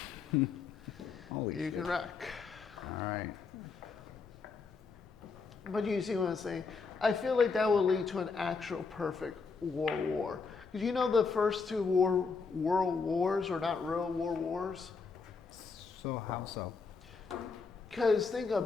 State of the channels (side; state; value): right; quieter; 4.9 dB